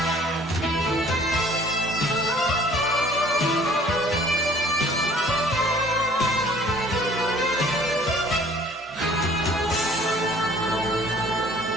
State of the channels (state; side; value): normal; both; correlation 0.54